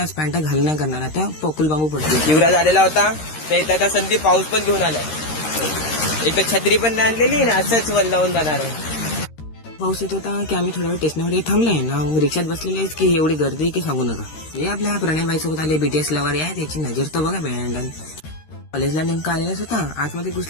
पॅन्टा घाल नाही करणार, आता पोकुल बांबू पडतील. युवराज आलेला होता तर इथं आता संदीप पाऊस पण घेऊन आलाय. एक तर छत्री पण नाही आणलेली ना, असंच वल्लावून जाणार आहे. पाऊस येत होता की आम्ही थोडा वेळ स्टेशनवर थांबलाय ना, रिक्षात बसलेले की एवढी गर्दी की सांगू नका. हे आपल्या प्रणयबाई सोबत आले BTS लवर आहे, त्याची नजर तर बघा बँड. कॉलेजला नेमका आलेलाच होता, आतमध्ये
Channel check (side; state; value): right; late; 13 ms